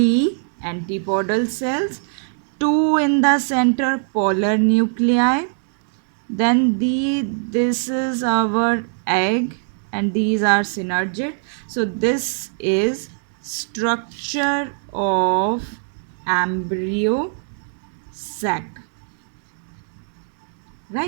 antipodal cells, two in the center, polar nuclei. Then this is our egg and these are synergid. So this is structure of embryo sac,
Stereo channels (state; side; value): silent; left; 65 dB below the other